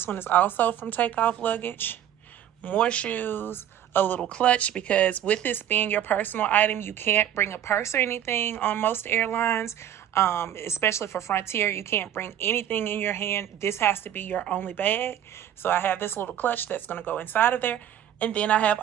one is also from Take Off Luggage. More shoes. A little clutch, because with this being your personal item, you can't bring a purse or anything on most airlines, especially for Frontier. You can't bring anything in your hand. This has to be your only bag. So I have this little clutch that's going to go inside of there. And then I have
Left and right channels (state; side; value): quieter; left; 10.7 dB